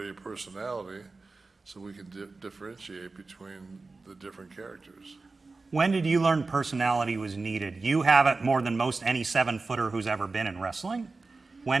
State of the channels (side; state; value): left; quieter; 3.8 dB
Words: a personality so we can differentiate between the different characters. When did you learn personality was needed? You have it more than most any 7-footer who's ever been in wrestling.